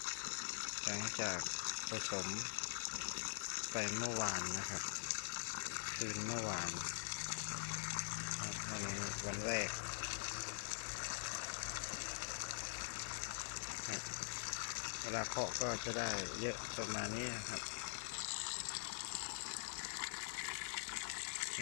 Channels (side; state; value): right; silent; digital silence